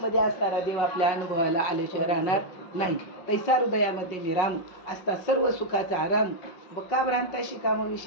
असणारा देव आपल्या अनुभवाला आल्याशिवाय राहणार नाही. तैसा हृदयामध्ये निराम असता सर्व सुखाचा आराम, बका भ्रांताशी काम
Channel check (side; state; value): right; late; 5.5 ms